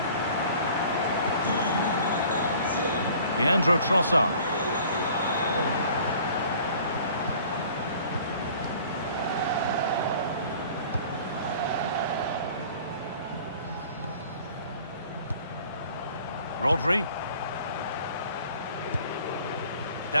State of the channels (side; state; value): both; inverted; correlation -0.50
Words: Leandro Trossard. Rodri.